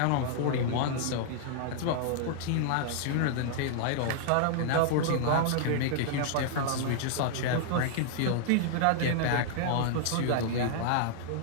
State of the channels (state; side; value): different; both; correlation -0.01